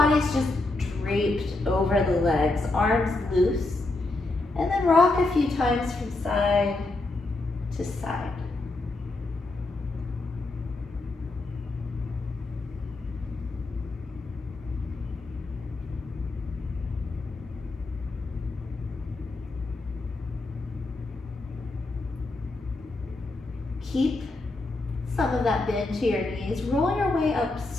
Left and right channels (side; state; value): right; quieter; 3.1 dB